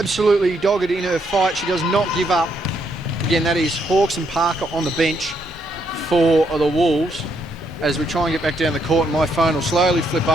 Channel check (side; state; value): both; normal; correlation 0.75